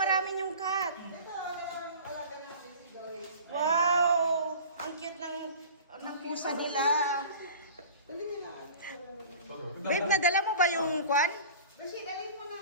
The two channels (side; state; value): both; inverted; correlation -0.40